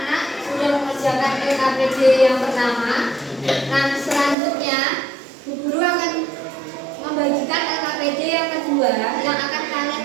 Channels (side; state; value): left; drops out; at 4.4 s